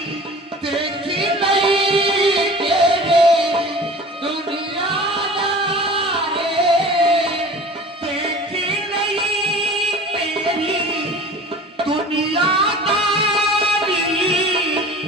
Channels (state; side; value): normal; both; correlation 0.42